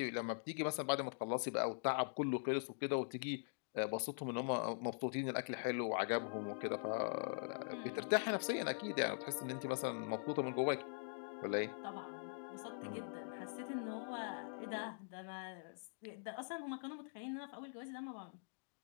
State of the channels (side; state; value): right; silent; digital silence